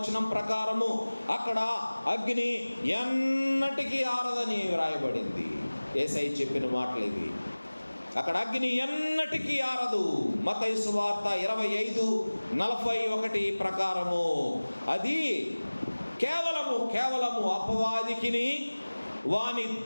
ప్రకారము అక్కడ అగ్ని ఎన్నటికీ ఆరదని వ్రాయబడింది. యేసయ్య చెప్పిన మాటలు ఇవి. అక్కడ అగ్ని ఎన్నటికీ ఆరదు. మత్తయి సువార్త 25:41 ప్రకారము అది కేవలము అపవాదికిని వాని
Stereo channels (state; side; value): inverted; both; correlation -1.00